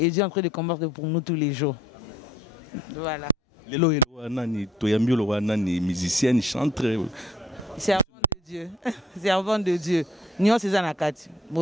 Dieu est en train de combattre pour nous tous les jours. Voilà. Les musiciennes, chantent. Servant de Dieu. Servant de Dieu. Nous sommes en Akati.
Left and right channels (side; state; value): both; normal; correlation 0.62